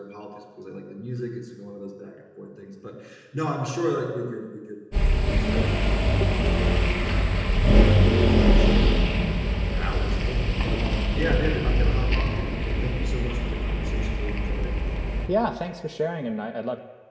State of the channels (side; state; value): both; identical; correlation 1.00